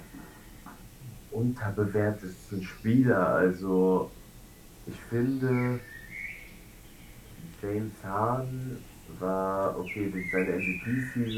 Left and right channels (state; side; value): identical; both; correlation 1.00